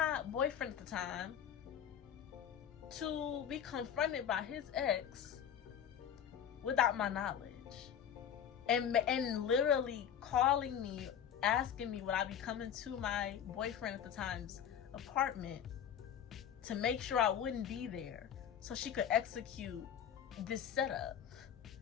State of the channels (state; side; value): quieter; right; 8.9 dB